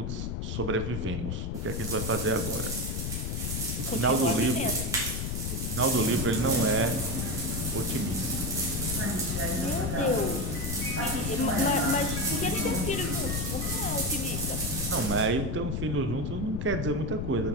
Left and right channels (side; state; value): left; noise; rumble, 2 dB below the sound